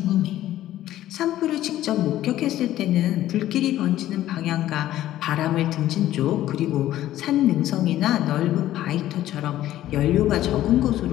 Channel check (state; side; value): quieter; right; 13.6 dB